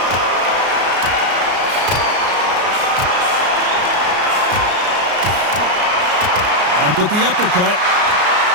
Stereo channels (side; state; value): left; late; 33 ms